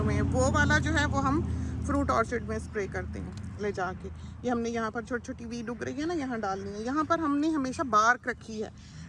हैं, वो वाला जो है वो हम फ्रूट ऑर्चिड में स्प्रे करते हैं ले जाके। ये हमने यहाँ पर छोटी छोटी वीड उग रही है ना, यहाँ डालनी है। यहाँ पर हमने हमेशा बार्क रखी है,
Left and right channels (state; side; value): identical; both; correlation 1.00